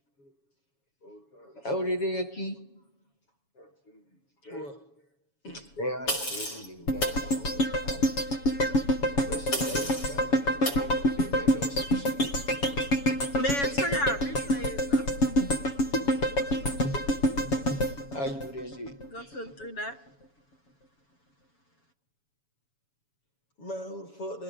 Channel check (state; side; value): late; right; 7.1 ms